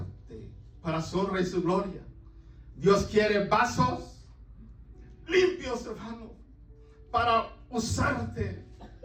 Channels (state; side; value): identical; both; correlation 1.00